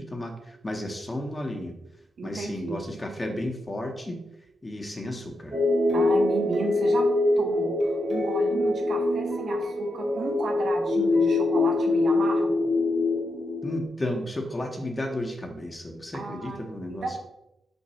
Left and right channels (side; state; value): both; normal; correlation 0.85